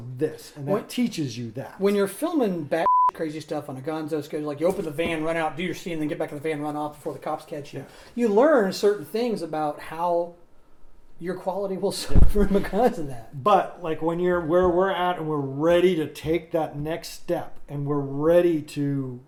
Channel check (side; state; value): both; identical; correlation 1.00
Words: this. And that teaches you that. When you're filming batshit crazy stuff on a gonzo schedule, like you open the van, run out, do your scene, then get back in the van, run off before the cops catch you. Yeah. You learn certain things about how your quality will suffer because of that. But like when you're where we're at and we're ready to take that next step and we're ready to,